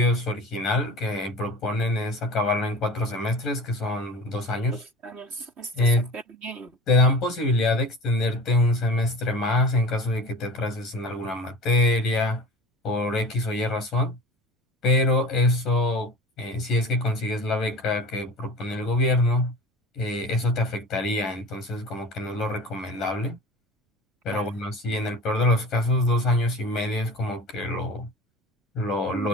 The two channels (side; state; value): both; normal; correlation 0.37